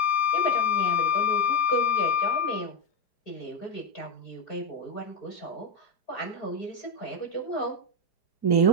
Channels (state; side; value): late; right; 4.5 ms